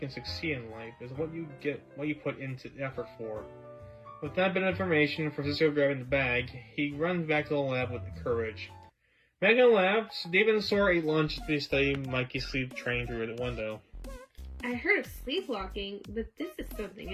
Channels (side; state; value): both; identical; correlation 1.00